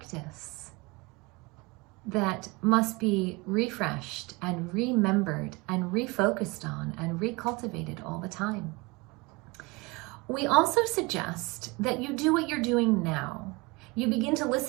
that must be refreshed and remembered and refocused on and recultivated all the time. We also suggest that you do what you're doing now. You begin to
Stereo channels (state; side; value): quieter; left; 25.4 dB